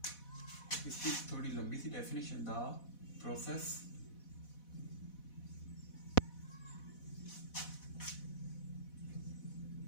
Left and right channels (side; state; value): right; late; 4.1 ms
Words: इसकी थोड़ी लंबी सी definition, the process